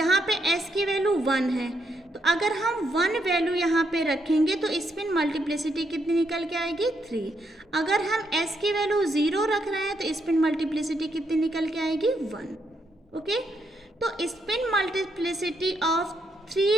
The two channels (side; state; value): both; normal; correlation 0.78